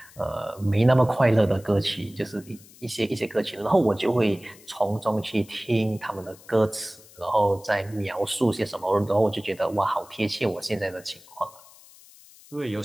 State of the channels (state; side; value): noise; left; hiss, 23 dB below the sound